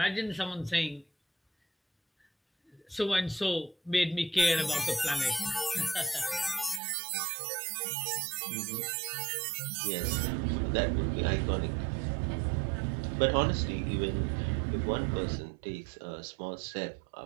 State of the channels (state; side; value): drops out; left; at 6.8 s